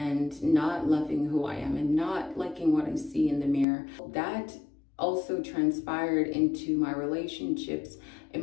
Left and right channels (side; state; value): right; drops out; at 3.7 s